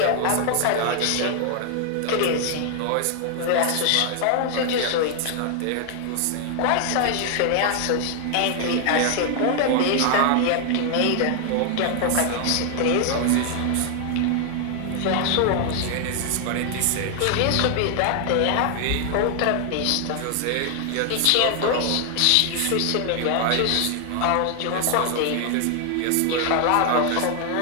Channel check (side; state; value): both; different; correlation 0.00